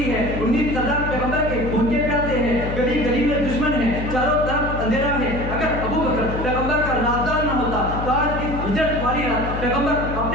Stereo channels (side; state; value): left; noise; hum, 5 dB below the sound